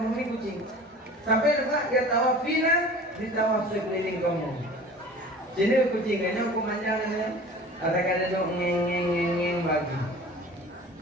kucing. Sampai lepas dia tawaf fina, dia tawaf sekeliling kamu. Jadi kucingnya aku manjangnya. Ada dong ngeng bagi.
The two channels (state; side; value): normal; both; correlation 0.42